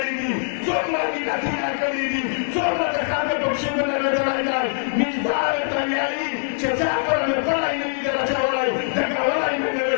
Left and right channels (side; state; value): right; silent; digital silence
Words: Somra Medina Tina Karidi, Somra de Khate Pachimane Lajai Dai, Mizdare Tanyai, Chezakora me para individual Chavalai, Takawalai